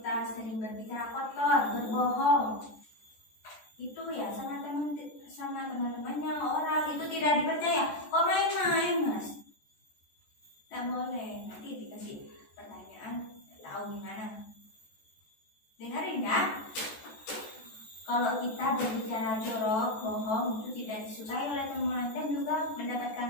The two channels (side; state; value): right; late; 14 ms